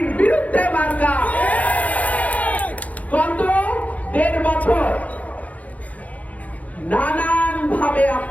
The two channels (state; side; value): late; right; 0.072 ms